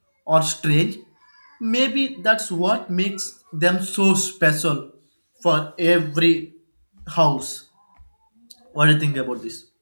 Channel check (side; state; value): both; inverted; correlation -1.00